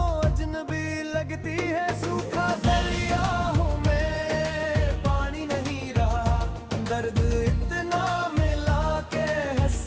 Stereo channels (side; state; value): both; identical; correlation 1.00